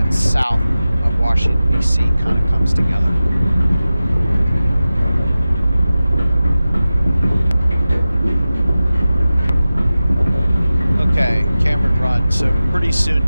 south of Washington, D.C. kind of comes together. Okay, Cameron Run. So pretty soon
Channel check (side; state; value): both; inverted; correlation -0.95